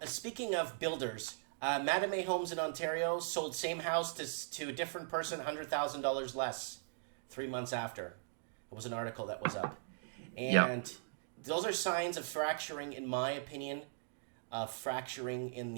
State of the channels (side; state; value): left; silent; digital silence